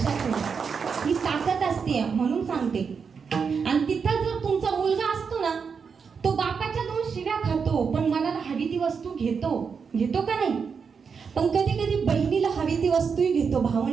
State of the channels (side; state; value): left; quieter; 5.9 dB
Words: ठेवा, ही ताकद असते म्हणून सांगते. आणि तिथं जर तुमचा मुलगा असतो ना, तो बापाच्या 2 शिव्या खातो, पण मनाला हवी ती वस्तू घेतो का नाही? पण कधी कधी बहिणीला हवी ती वस्तूही घेतो.